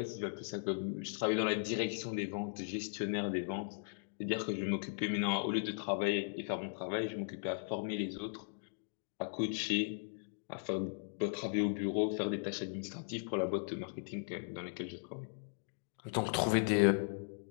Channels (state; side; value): silent; right; digital silence